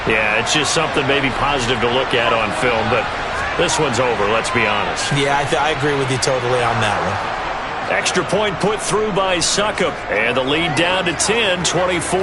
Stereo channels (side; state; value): both; identical; correlation 1.00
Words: Yeah, it's just something maybe positive to look at on film, but this one's over, let's be honest. Yeah, I agree with you totally on that one. Extra point put through by Succop. And the lead down to 10,